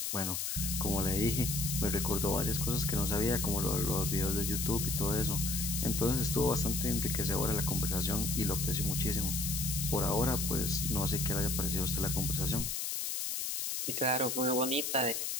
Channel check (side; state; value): left; noise; hiss, 1 dB below the sound